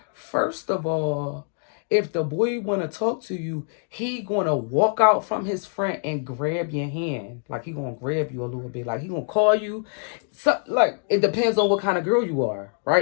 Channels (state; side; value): silent; right; 60 dB below the other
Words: first of all, if the boy want to talk to you, he going to walk out from his friend and grab your hand. Like, he going to grab you a little bit. Like, he going to call you. So, like, it depends on what kind of girl you are,